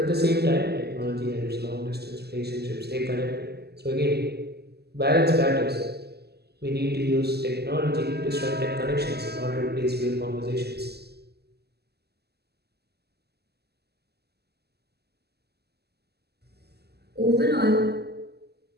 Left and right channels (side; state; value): left; late; 0.47 ms